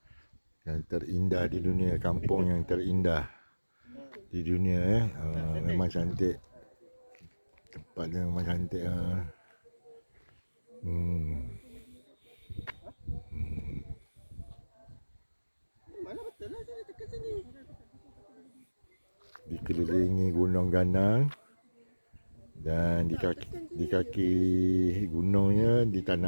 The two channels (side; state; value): both; inverted; correlation -1.00